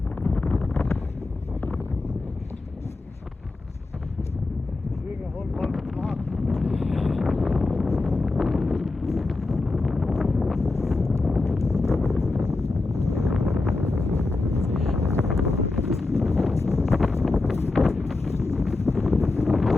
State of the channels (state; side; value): quieter; right; 3.3 dB